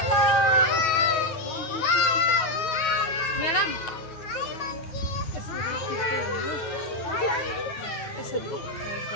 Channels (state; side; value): late; right; 9.2 ms